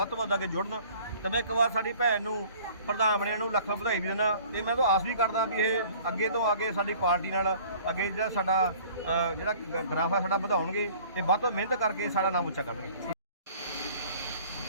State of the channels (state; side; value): inverted; both; correlation -0.51